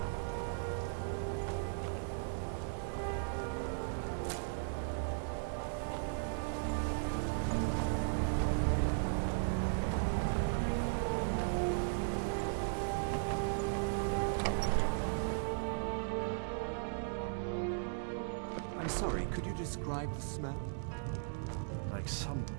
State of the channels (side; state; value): left; silent; digital silence